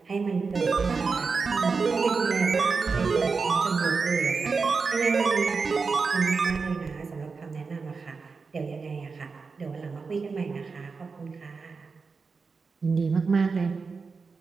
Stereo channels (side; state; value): left; quieter; 4.7 dB